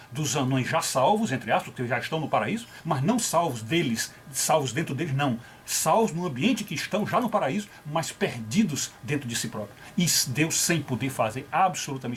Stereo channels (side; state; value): both; identical; correlation 1.00